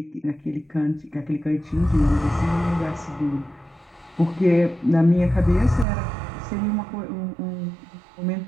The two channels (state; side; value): drops out; left; at 5.9 s